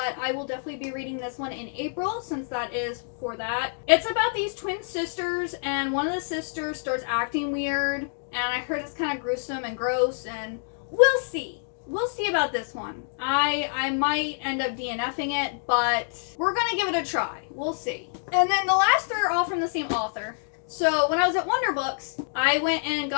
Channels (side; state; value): right; silent; digital silence